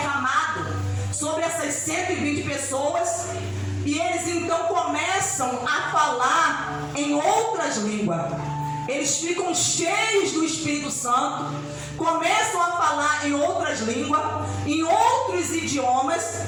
sobre essas 120 pessoas, e eles então começam a falar em outras línguas. Eles ficam cheios do Espírito Santo, começam a falar em outras línguas, em outros idiomas,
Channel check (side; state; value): both; identical; correlation 1.00